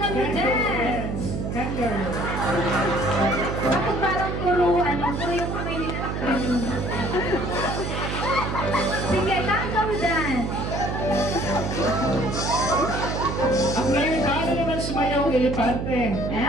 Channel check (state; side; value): noise; right; hum, 3 dB below the sound